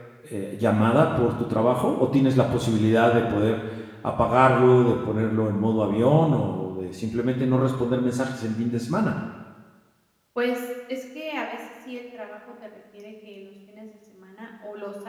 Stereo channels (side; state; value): both; identical; correlation 1.00